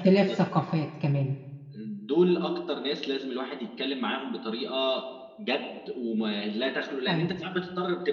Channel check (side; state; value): both; identical; correlation 1.00